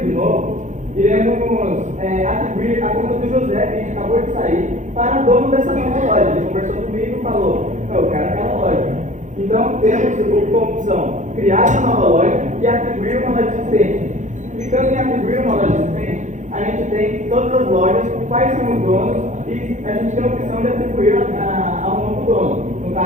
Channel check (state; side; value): late; left; 0.35 ms